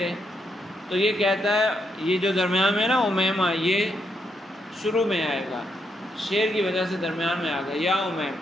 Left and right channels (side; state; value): both; normal; correlation 0.78